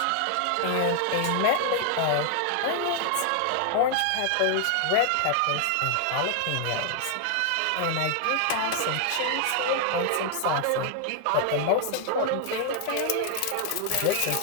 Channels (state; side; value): different; both; correlation 0.00